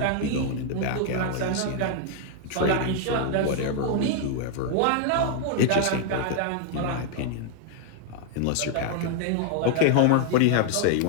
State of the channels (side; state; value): both; different; correlation 0.00